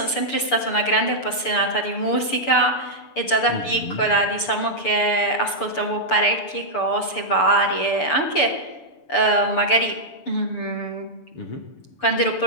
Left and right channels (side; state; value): right; late; 6.8 ms